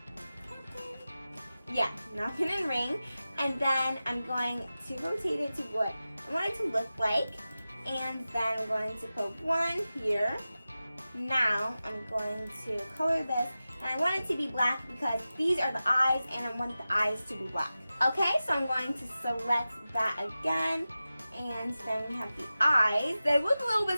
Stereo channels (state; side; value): inverted; both; correlation -0.95